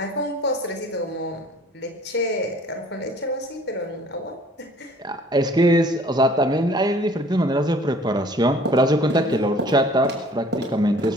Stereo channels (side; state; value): both; normal; correlation 0.53